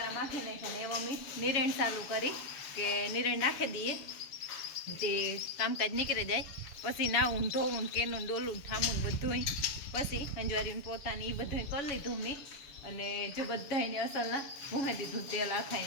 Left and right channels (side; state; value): right; late; 7.1 ms